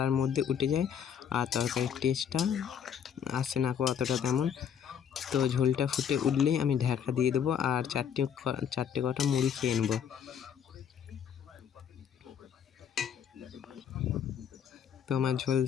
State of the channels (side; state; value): right; quieter; 8.2 dB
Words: মধ্যে উঠে যায়, আর তরকারির টেস্টটা আসে না অতটা তেমন। তো ঝোলটা ফুটে উঠলেই আমি ঢাকা দিয়ে দেবো, আর চারটে কটা মুড়ি খেয়ে নেবো। তো আমার ঝোল